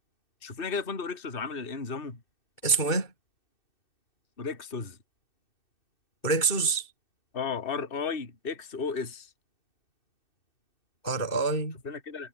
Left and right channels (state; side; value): late; right; 2.6 ms